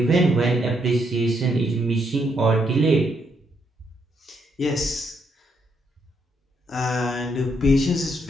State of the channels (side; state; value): both; normal; correlation 0.76